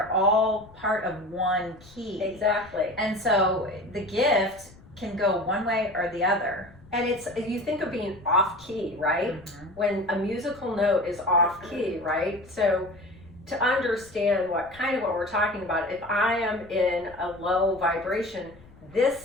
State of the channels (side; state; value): left; noise; rumble, 23 dB below the sound